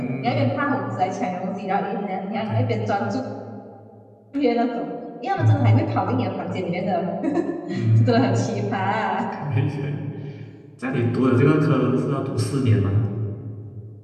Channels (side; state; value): both; identical; correlation 1.00